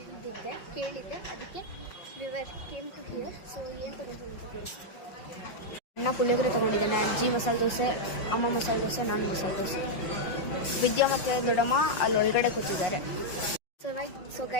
ಕೇಳಿದ್ದೆ, ಅದಕ್ಕೆ ವಿವರ್ ಕೇಮ್ ಟು ಹಿಯರ್. ಸೊ ಏನು ತೊಗೊಂಡು ಅಂತ ತೋರಿಸ್ತೀನಿ. ಅಣ್ಣ ಪುಳಿಯೋಗರೆ ತೊಗೊಂಡಿದ್ದಾನೆ, ಅಜ್ಜಿ ಮಸಾಲೆ ದೋಸೆ, ಅಮ್ಮ ಮಸಾಲೆ ದೋಸೆ, ನಾನು ಮಸಾಲೆ ದೋಸೆ. ವಿದ್ಯಾ ಮತ್ತು ದೊಡ್ಡಮ್ಮ ಅಲ್ಲಿ ಒಳಗಡೆ ಕೂತಿದ್ದಾರೆ. ಸೊ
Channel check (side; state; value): right; late; 5.5 ms